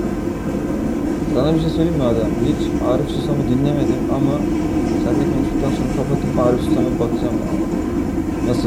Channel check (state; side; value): identical; both; correlation 1.00